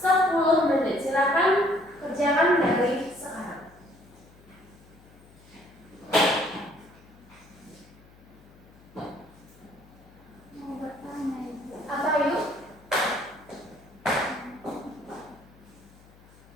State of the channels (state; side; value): noise; left; hum, 25 dB below the sound